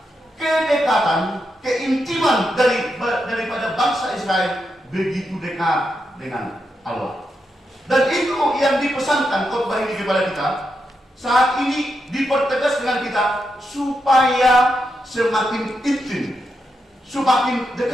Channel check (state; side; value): normal; both; correlation 0.85